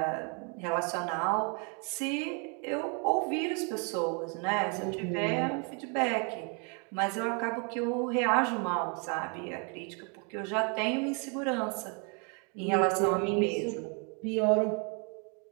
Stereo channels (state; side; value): quieter; left; 36.3 dB